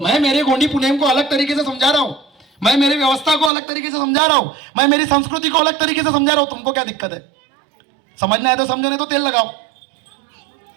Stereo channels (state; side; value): drops out; left; at 3.5 s